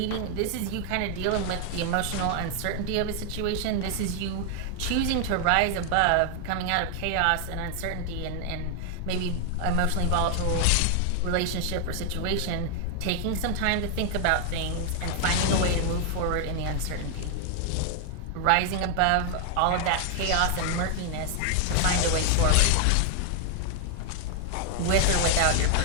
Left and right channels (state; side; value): different; both; correlation 0.00